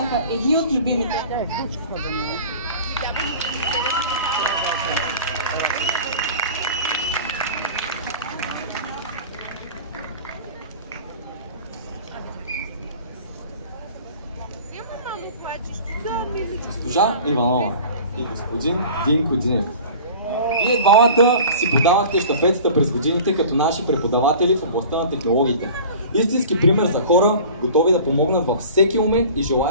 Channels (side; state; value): both; inverted; correlation -0.41